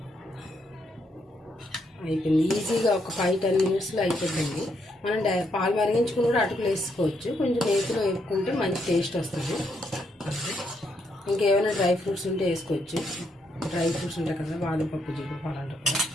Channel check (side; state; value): both; normal; correlation 0.76